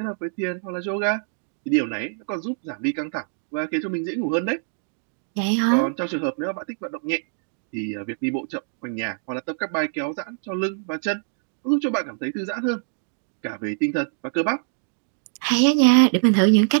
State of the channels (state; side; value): silent; left; digital silence